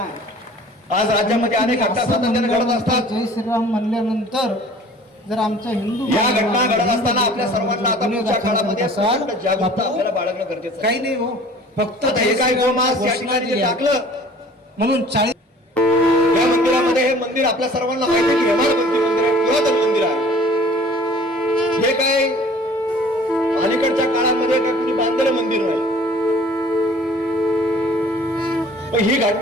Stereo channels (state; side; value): normal; both; correlation 0.49